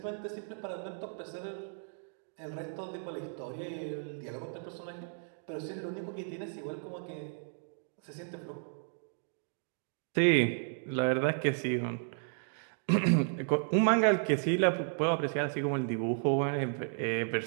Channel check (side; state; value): left; silent; digital silence